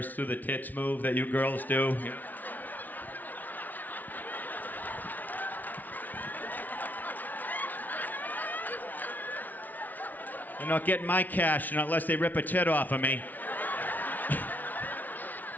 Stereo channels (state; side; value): late; right; 0.080 ms